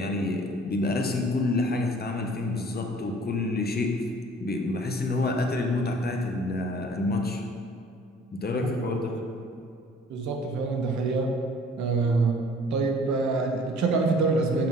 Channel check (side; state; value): both; normal; correlation 0.52